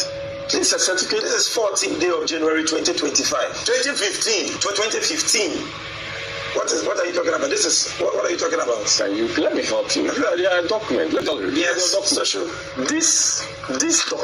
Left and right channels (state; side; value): identical; both; correlation 1.00